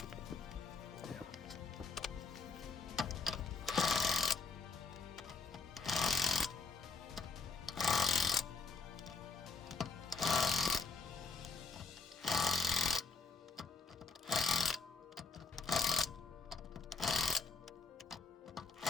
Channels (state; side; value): quieter; right; 4.4 dB